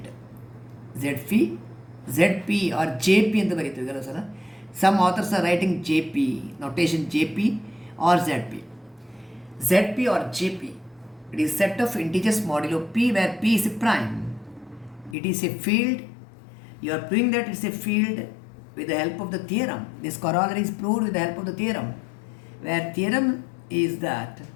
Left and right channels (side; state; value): right; drops out; at 15.2 s